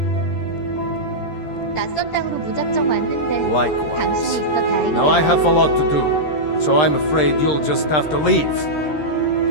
낯선 땅으로 무작정 왔는데 당신이 Likewise. 있어 다행이야. Now I have a lot to do, so I'm afraid you'll just have to leave.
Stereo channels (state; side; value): late; right; 13 ms